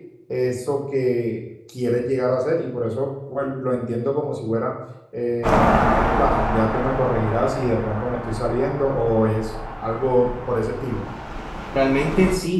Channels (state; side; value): identical; both; correlation 1.00